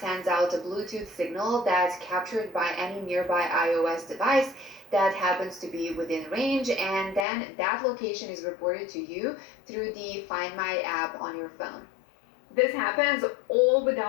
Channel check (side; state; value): right; drops out; at 7.2 s